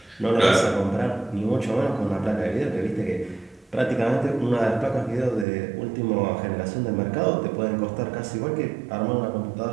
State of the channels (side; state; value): left; drops out; at 5.5 s